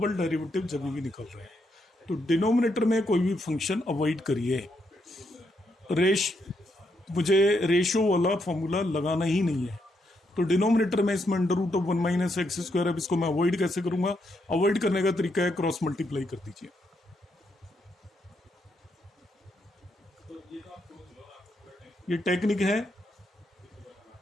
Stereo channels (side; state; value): both; normal; correlation 0.78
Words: डेरिवेटिव जब भी निकल रहे हैं, तो डिनोमिनेटर में कोई भी फंक्शन अवॉइड करिए। मुझे रेशो वाला फॉर्मूला लगाना ही नहीं है। तो डिनोमिनेटर में इसमें under root of 1 minus x square. अब इसको मैं अवॉइड कैसे करूंगा? अवॉइड करने का तरीका है क्रॉस मल्टीप्लाई कर दीजिए। ये टेक्निक है।